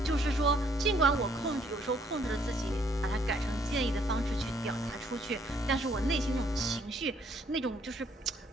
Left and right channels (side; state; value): both; normal; correlation 0.66